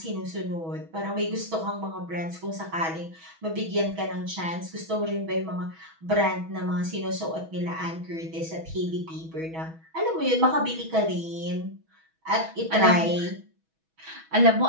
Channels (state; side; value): late; left; 6.2 ms